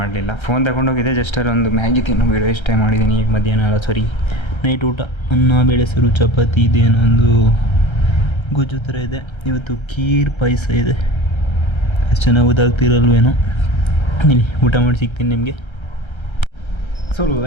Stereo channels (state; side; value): late; right; 1.3 ms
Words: ಫೋನ್ ತಗೊಂಡೋಗಿದ್ದೆ. ಜಸ್ಟ್ ಅಲ್ಲಿ ಒಂದು ಮ್ಯಾಗಿ ತಿನ್ನೋ ವೀಡಿಯೋ ಇಷ್ಟೇ ಮಾಡಿದ್ದೀನಿ. ಈಗ ಮಧ್ಯಾಹ್ನ ಅಲ್ಲ ಸಾರಿ ನೈಟ್ ಊಟ ಅನ್ನ ಬೇಳೆ ಸಾರು ಚಪಾತಿ ಇದೇನೋ ಒಂದು ಗೊಜ್ಜು ಥರ ಇದೆ. ಇವತ್ತು ಖೀರ್ ಪಾಯಸ ಇದೆ. ಅಷ್ಟು ಚೆನ್ನಾಗಿ ಗೊತ್ತಾಗ್ತಿರಲ್ವೇನೋ. ಇಲ್ಲಿ ಊಟ ಮಾಡಿ ಸಿಗ್ತೀನಿ ನಿಮಗೆ. So